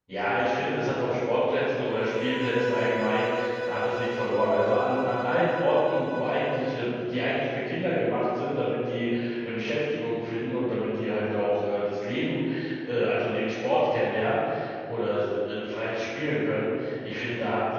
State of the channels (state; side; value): identical; both; correlation 1.00